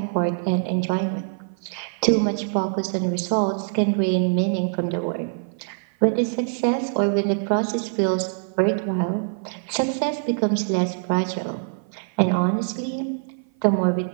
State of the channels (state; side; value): silent; left; 55 dB below the other